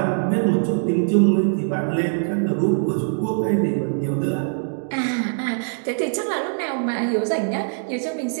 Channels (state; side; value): silent; left; digital silence